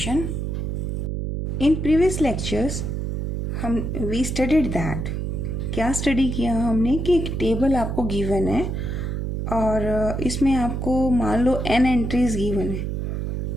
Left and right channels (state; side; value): noise; right; hum, 2 dB below the sound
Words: In previous lectures, we studied that. क्या स्टडी किया हमने कि एक टेबल आपको गिवन है और इसमें आपको मान लो n एंट्रीज गिवन है.